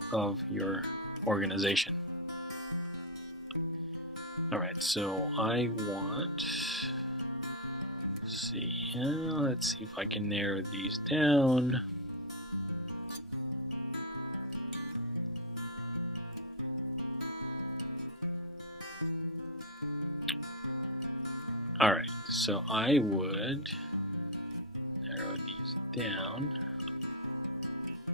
of your organization. All right, so I want, let's see if I can narrow these down. So I would narrow these down.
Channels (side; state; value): both; normal; correlation 0.05